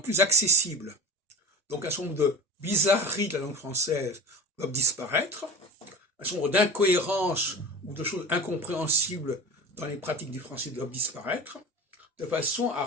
accessible. Donc un certain nombre de bizarreries de la langue française doivent disparaître, un certain nombre d'incohérences ou de choses incompréhensibles dans les pratiques du français doivent disparaître, de façon à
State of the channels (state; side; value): normal; both; correlation 0.33